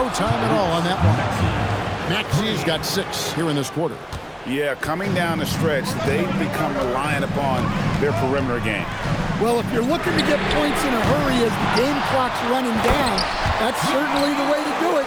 time at all on that one. Maxey's got 6 here in this quarter. Yeah, coming down the stretch, they've become reliant upon their perimeter game. Well, if you're looking to get points in a hurry as the game clock's running down, that's certainly the way to do it.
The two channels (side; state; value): both; identical; correlation 1.00